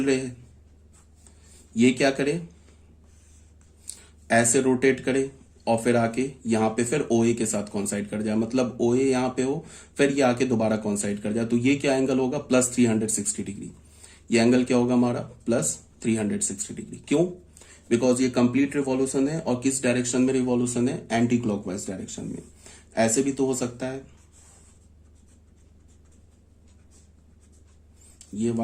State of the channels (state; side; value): identical; both; correlation 1.00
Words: रे है, ये क्या करे, ऐसे रोटेट करे और फिर आके यहां पे फिर ओ ए के साथ कॉन्साइड कर जाए, मतलब ओ ए यहां पे हो, फिर ये आके दोबारा कॉन्साइड कर जाए, तो ये क्या एंगल होगा, प्लस 360 डिग्री। ये एंगल क्या होगा हमारा, प्लस 360 डिग्री। क्यों, बिकॉज ये कंप्लीट रिवॉल्यूशन है, और किस डायरेक्शन में रिवॉल्यूशन है, एंटी क्लॉकवाइज डायरेक्शन में। ऐसे भी तो हो सकता है, ये